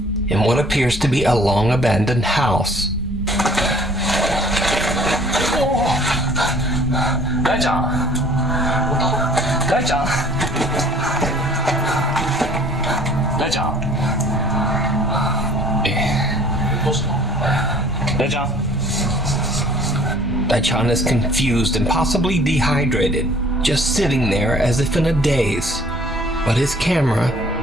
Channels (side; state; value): both; normal; correlation 0.53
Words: in what appears to be a long abandoned house. 大ちゃん、大ちゃん、大ちゃん、どうしたの？大ちゃん。 Daichan is confused and possibly dehydrated, just sitting there as if in a daze. But his camera